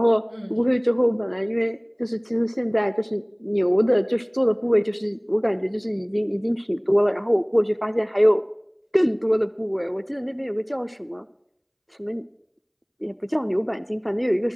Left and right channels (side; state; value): both; identical; correlation 1.00